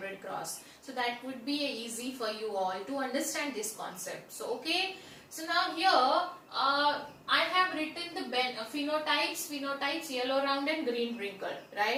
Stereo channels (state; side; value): identical; both; correlation 1.00